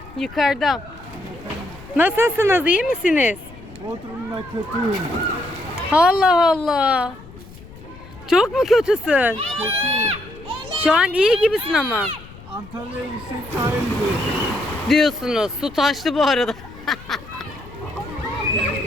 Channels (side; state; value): left; noise; rumble, 19 dB below the sound